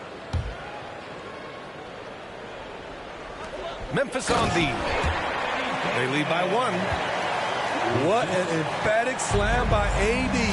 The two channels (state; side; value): identical; both; correlation 1.00